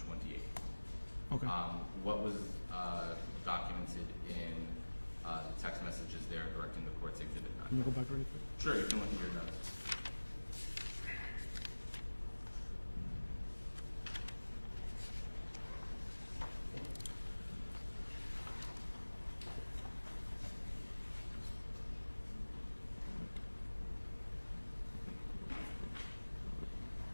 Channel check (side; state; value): both; inverted; correlation -1.00